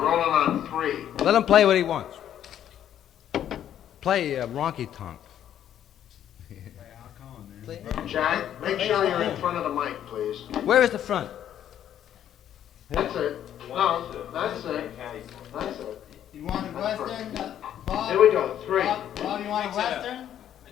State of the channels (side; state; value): right; quieter; 10.5 dB